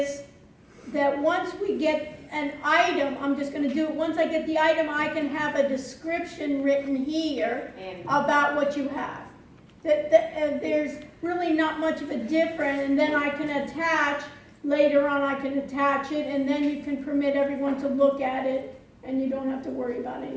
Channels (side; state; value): both; identical; correlation 1.00